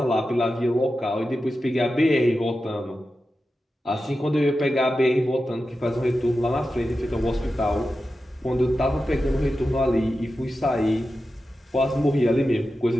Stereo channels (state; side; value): normal; both; correlation 0.91